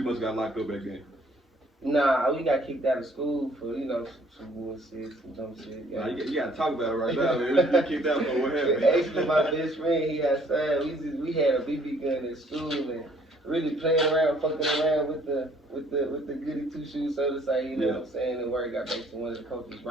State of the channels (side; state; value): both; normal; correlation 0.61